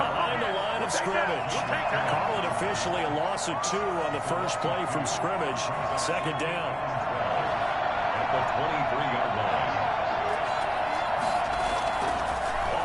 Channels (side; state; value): both; identical; correlation 1.00